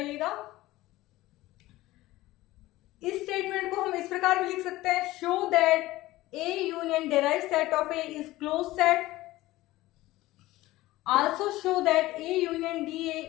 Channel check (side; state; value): right; quieter; 17.5 dB